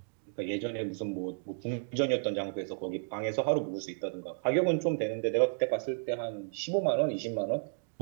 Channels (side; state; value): left; silent; digital silence